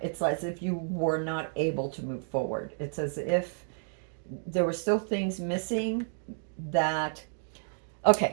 as if you were not able to move forward. It's as if there were still things missing that,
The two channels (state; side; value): silent; left; digital silence